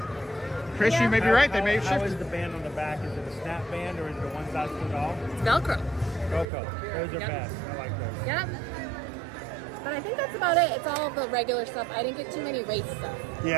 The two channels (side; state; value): left; drops out; at 6.5 s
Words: Chris, you may be right. They may have How is shifted. the band on the back? Is it a snap band or is it a one size fits all? It's Velcro. Coco. Those are Yep. best. I like those. Yep. But I think that's about it. It's all the regular stuff. I didn't get too many race stuff.